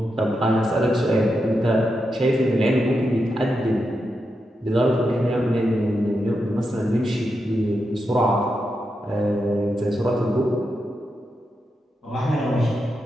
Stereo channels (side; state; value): both; normal; correlation 0.86